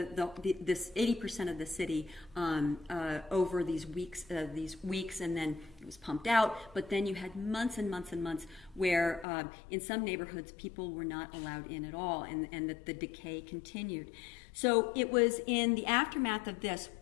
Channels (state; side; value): drops out; right; at 9.2 s